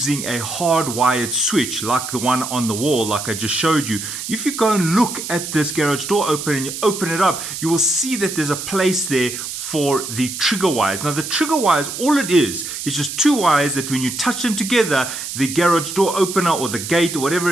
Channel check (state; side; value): noise; right; hiss, 7 dB below the sound